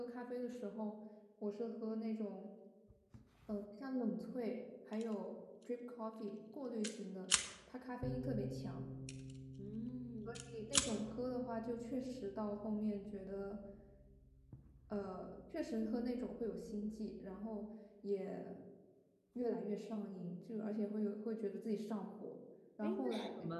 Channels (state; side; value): identical; both; correlation 1.00